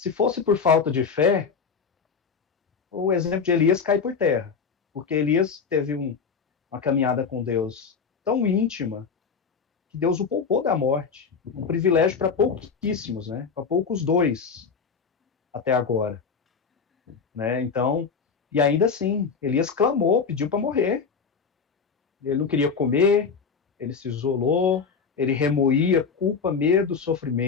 fosse por falta de fé, o exemplo de Elias cai por terra. Porque Elias teve uma caminhada com Deus tão íntima que Deus o poupou da morte. Um privilégio para pouquíssimos, né? Para poucos dois até agora. Né? Então, e ainda assim, Elias clamou, pediu para morrer. Ele não queria comer, ele se isolou, ele remoía culpa, medo,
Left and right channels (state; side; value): quieter; right; 5.7 dB